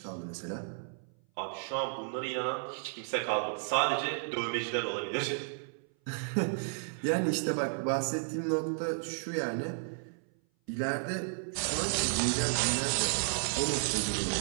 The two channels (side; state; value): left; silent; 56 dB below the other